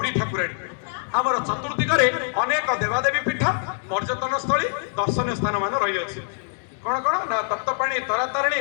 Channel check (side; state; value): right; silent; 62 dB below the other